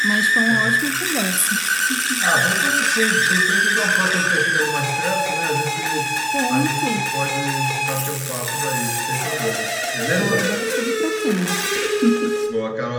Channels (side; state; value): both; identical; correlation 1.00